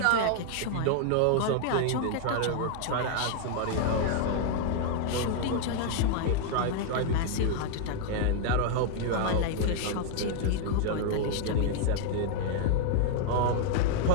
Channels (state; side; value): different; both; correlation 0.00